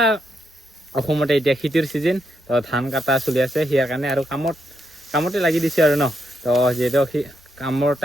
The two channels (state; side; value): normal; both; correlation 0.80